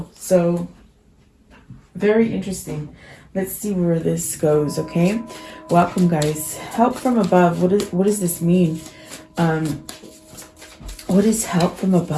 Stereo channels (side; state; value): both; identical; correlation 1.00